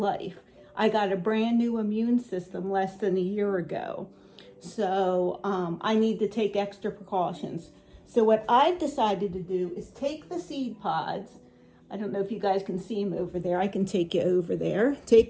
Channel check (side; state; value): both; identical; correlation 1.00